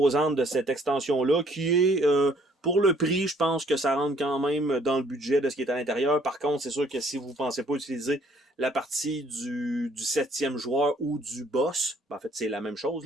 de cette extension-là qui est, pour le prix, je pense que ça rentre quand même dans le budget de ce qui est à l'intérieur. Par contre, c'est sûr que si vous ne pensez pas utiliser la partie du 7e joueur ou du boss, ben en fait, c'est la même chose,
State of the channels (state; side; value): normal; both; correlation 0.62